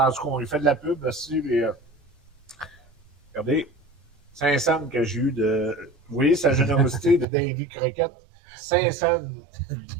tout cas, on lui fait de la pub aussi. Mais, regardez, 500 que j'ai eu de. Vous voyez sa générosité de Davy Croquette? 500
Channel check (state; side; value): drops out; left; at 7.2 s